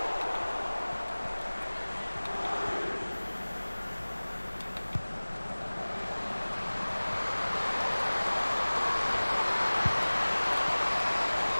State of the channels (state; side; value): inverted; both; correlation -1.00